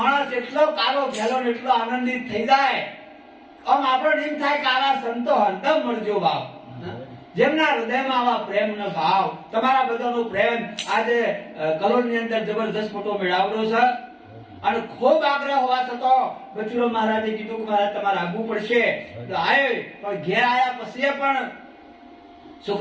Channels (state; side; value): identical; both; correlation 1.00